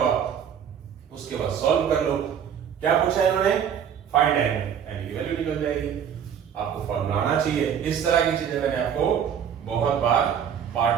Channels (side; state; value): left; quieter; 8.4 dB